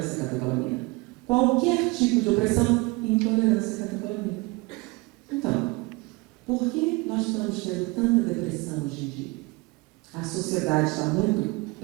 catecolamina. Qualquer tipo de opressão? Intolerância catecolamina. Então, por que nós estamos tendo tanta depressão hoje em dia? A sociedade está muito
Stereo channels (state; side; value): quieter; left; 24.8 dB